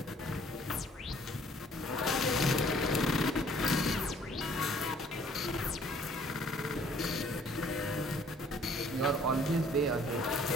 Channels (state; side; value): normal; both; correlation 0.59